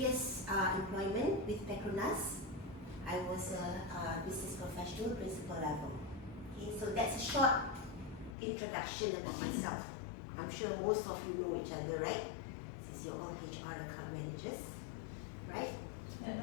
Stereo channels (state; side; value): drops out; right; at 8.3 s